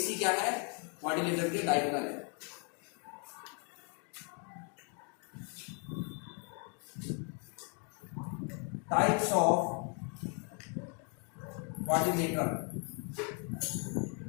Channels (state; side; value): quieter; right; 39.5 dB